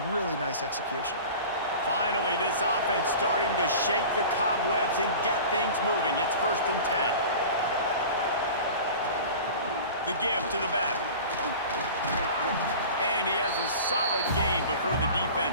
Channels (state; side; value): inverted; both; correlation -0.38